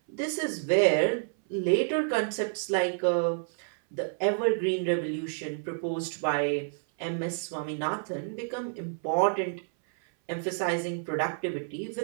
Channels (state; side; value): silent; left; 58 dB below the other